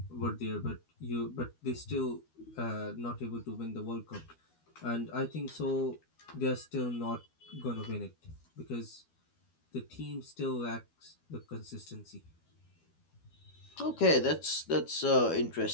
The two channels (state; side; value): late; right; 12 ms